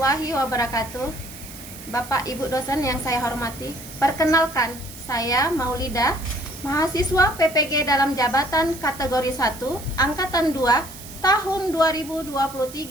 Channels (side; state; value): right; noise; hiss, 16 dB below the sound